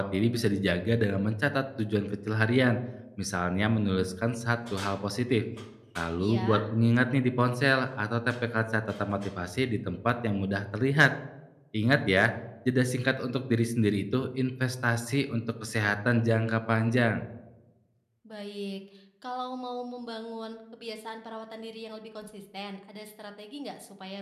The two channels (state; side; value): identical; both; correlation 1.00